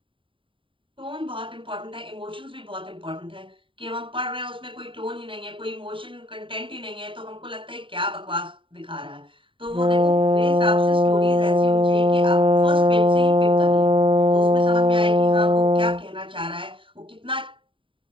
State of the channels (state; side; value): late; left; 0.25 ms